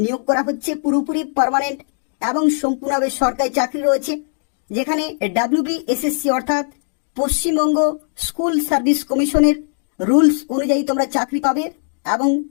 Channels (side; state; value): right; silent; digital silence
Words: নিয়োগ করা হচ্ছে। পুরোপুরি পার্মানেন্ট এবং সম্পূর্ণভাবে সরকারি চাকরি রয়েছে, যেখানে WBSSC অর্থাৎ পশ্চিমবঙ্গ স্কুল সার্ভিস কমিশনের রুলস অনুযায়ী তোমরা চাকরি পাবে এবং